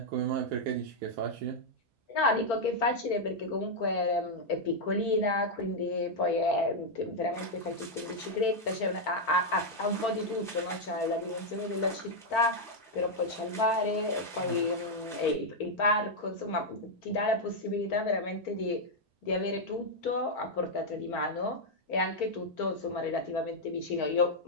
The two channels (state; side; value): normal; both; correlation -0.02